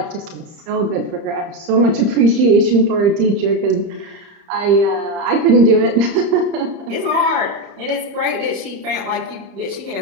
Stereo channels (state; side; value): late; left; 30 ms